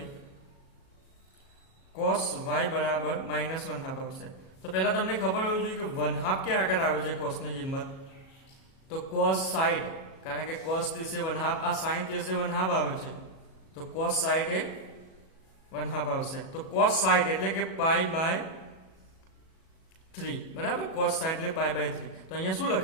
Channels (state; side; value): late; right; 37 ms